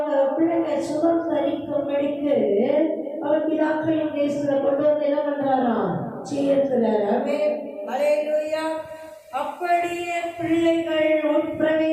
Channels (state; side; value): identical; both; correlation 1.00